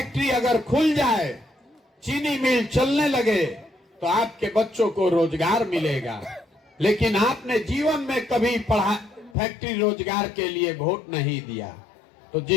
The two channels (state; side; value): drops out; right; at 9.3 s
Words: अगर खुल जाए, चीनी मिल चलने लगे तो आपके बच्चों को रोजगार मिलेगा, लेकिन आपने जीवन में कभी फैक्ट्री रोजगार के लिए वोट नहीं दिया। तो